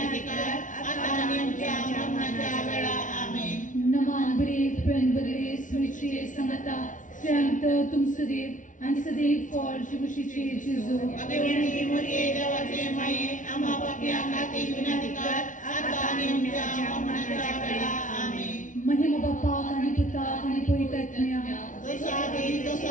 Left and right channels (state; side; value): late; right; 0.37 ms